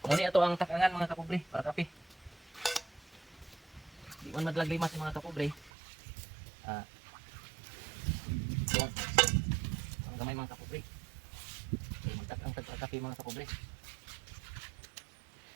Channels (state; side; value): drops out; left; at 5.7 s